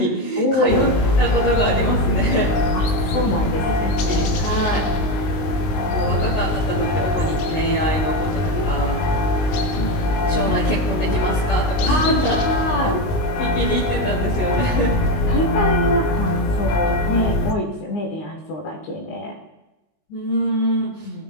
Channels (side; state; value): right; late; 19 ms